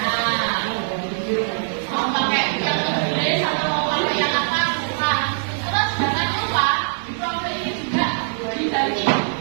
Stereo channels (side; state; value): left; silent; digital silence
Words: mau pakai yang tulis atau mau pakai yang apa? Bukan. Terus jangan lupa di profil ini juga diganti